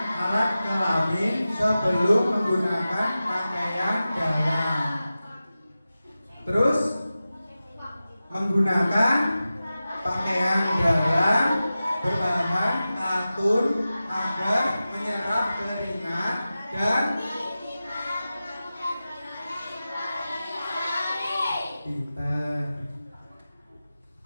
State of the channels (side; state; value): both; inverted; correlation -0.94